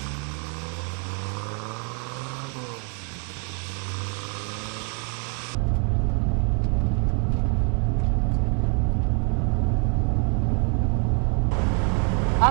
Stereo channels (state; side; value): quieter; left; 36.7 dB